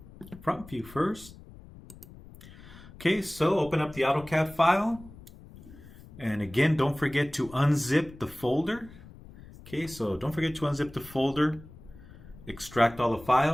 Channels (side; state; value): left; noise; rumble, 19 dB below the sound